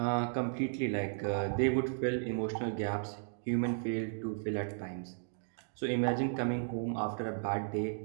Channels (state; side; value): silent; left; digital silence